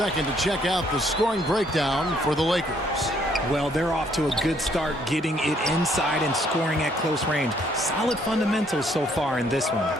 to check out the scoring breakdown for the Lakers. Well, they're off to a good start getting it inside and scoring at close range. Solid fundamentals so far in this one.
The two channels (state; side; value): normal; both; correlation 0.67